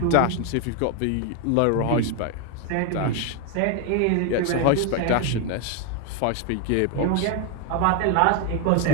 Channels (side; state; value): both; different; correlation 0.01